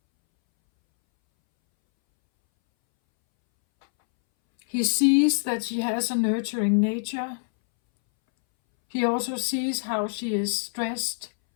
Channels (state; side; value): silent; right; 61 dB below the other